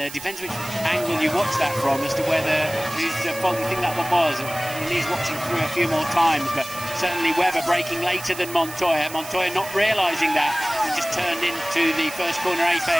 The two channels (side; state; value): right; noise; hiss, 12 dB below the sound